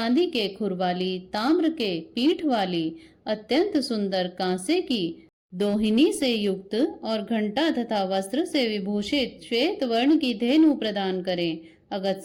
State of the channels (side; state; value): both; identical; correlation 1.00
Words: के खुर वाली, ताम्र के पीठ वाली, अत्यंत सुंदर कांसे की दोहिनी से युक्त और घंटा तथा वस्त्र से विभूषित श्वेत वर्ण की धेनु प्रदान करें।